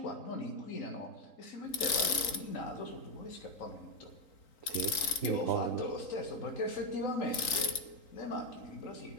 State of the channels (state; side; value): late; right; 3.9 ms